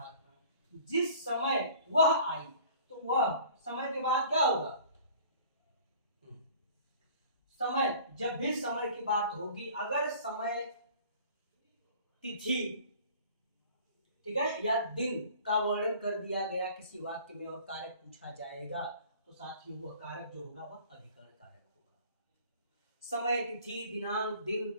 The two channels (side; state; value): both; inverted; correlation -0.48